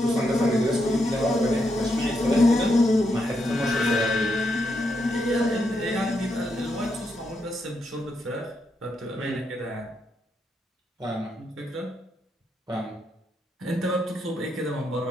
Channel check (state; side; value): normal; both; correlation 0.80